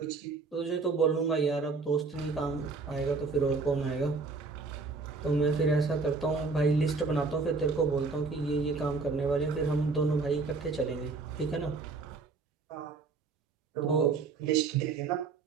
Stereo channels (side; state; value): left; quieter; 4.2 dB